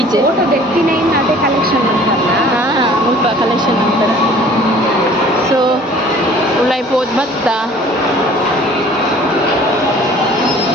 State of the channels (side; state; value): both; normal; correlation 0.51